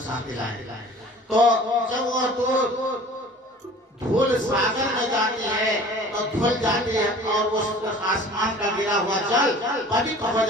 शांति लाए। तो जब वो धूल सागर में जाती है तो धुल जाती है और वो आसमान का गिरा हुआ जल पवित्र हो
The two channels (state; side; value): normal; both; correlation 0.45